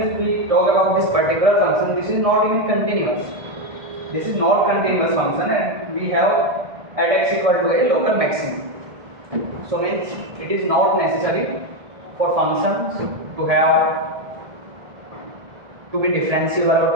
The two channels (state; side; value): late; left; 1.6 ms